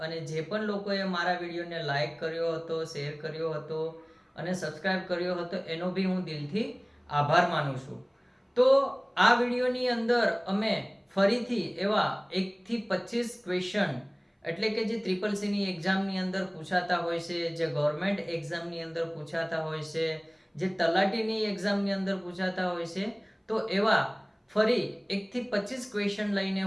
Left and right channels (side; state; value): both; identical; correlation 1.00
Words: અને જે પણ લોકોએ મારા વિડીયોને લાઈક કર્યો હતો, શેર કર્યો હતો અને સબસ્ક્રાઇબ કર્યો હતો એનો બી હું દિલથી આભાર માનું છું. તો આ વિડીયોની અંદર અમે ફરીથી એવા 1 થી 25 ક્વેશ્ચન એટલે કે જે CCC એક્ઝામની અંદર પૂછાતા હોય છે, જે ગવર્મેન્ટ એક્ઝામની અંદર પૂછાતા હોય છે, જે તલાટીની એક્ઝામની અંદર પૂછાતા હોય છે, તો એવા ફરી 1 થી 25 ક્વેશ્ચન લઈને